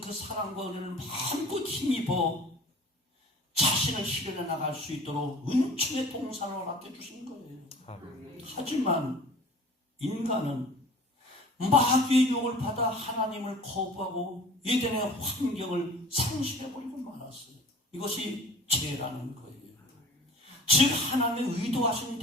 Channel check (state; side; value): normal; both; correlation 0.44